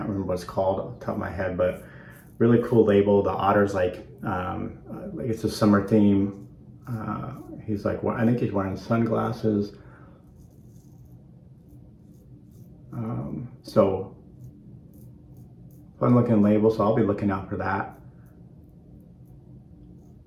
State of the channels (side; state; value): both; identical; correlation 1.00